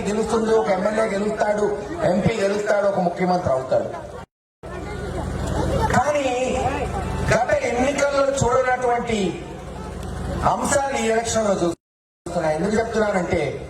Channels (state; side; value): identical; both; correlation 1.00